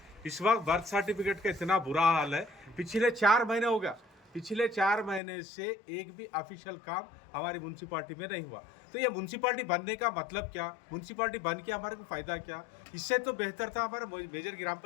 इस वक्त बर्थ सर्टिफिकेट का इतना बुरा हाल है, पिछले 4 महीने हो गया, पिछले 4 महीने से एक भी ऑफिशियल काम हमारी म्यूनसिपाल्टी में नहीं हुआ। तो ये म्यूनसिपाल्टी बनने का मतलब क्या? म्यूनसिपाल्टी बन के हमारे को फ़ायदा क्या? इससे तो बेहतर था हमारा मेजर ग्राम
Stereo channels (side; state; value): right; drops out; at 5.2 s